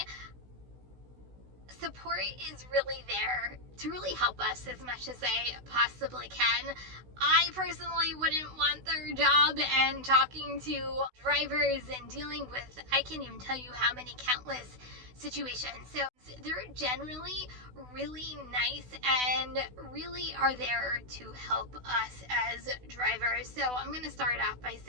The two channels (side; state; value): left; late; 16 ms